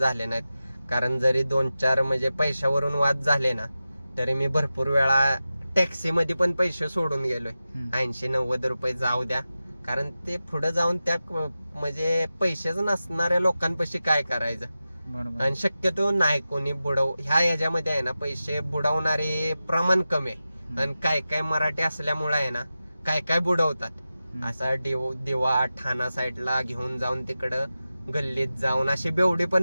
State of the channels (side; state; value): both; inverted; correlation -0.93